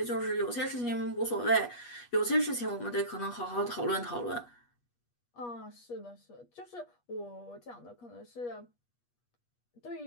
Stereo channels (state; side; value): late; right; 8.3 ms